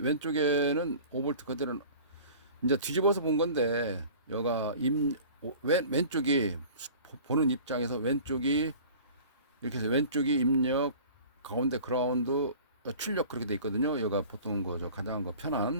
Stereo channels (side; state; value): both; inverted; correlation -0.43